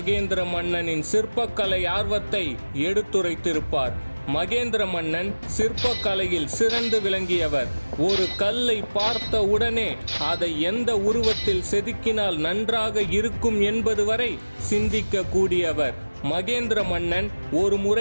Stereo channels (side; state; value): both; inverted; correlation -1.00